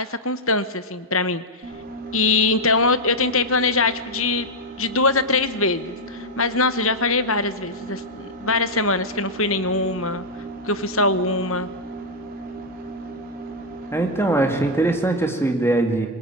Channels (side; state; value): both; normal; correlation 0.00